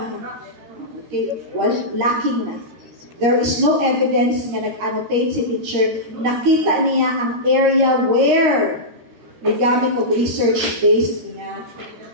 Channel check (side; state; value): left; late; 13 ms